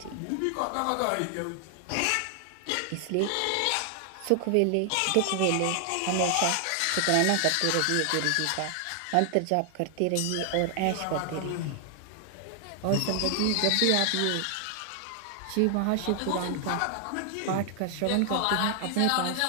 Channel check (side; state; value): both; different; correlation 0.00